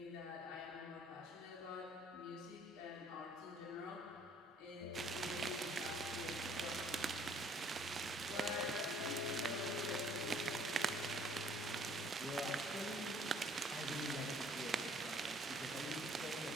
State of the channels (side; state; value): both; normal; correlation 0.59